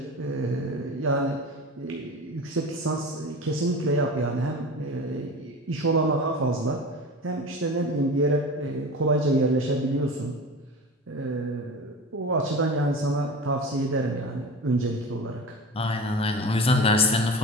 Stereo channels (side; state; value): both; normal; correlation 0.32